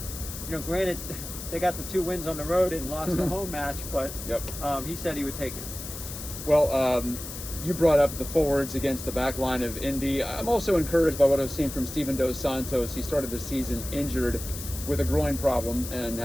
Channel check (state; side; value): noise; left; hiss, 10 dB below the sound